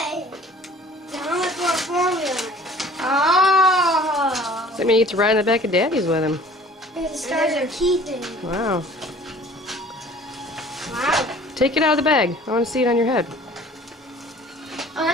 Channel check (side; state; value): both; normal; correlation 0.49